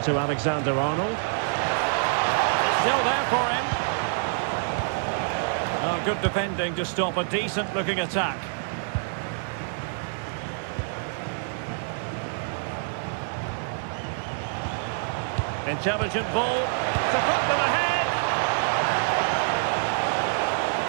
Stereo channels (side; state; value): left; silent; digital silence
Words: to Alexander-Arnold. Still there for him. Oh, good defending to stop a decent-looking attack. Intelligent ball to put them ahead.